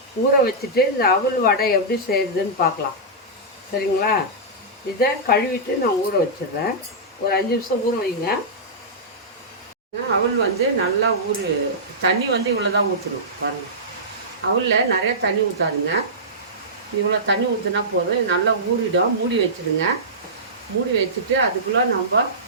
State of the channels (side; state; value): both; normal; correlation -0.15